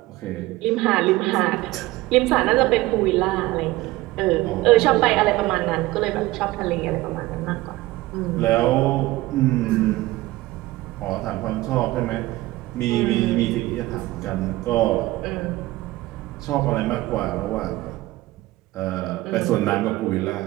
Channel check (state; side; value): quieter; left; 18.5 dB